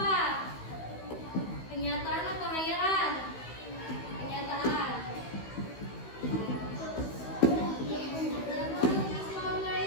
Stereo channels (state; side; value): late; right; 16 ms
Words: Kenyataan atau hayalan? Kenyataan.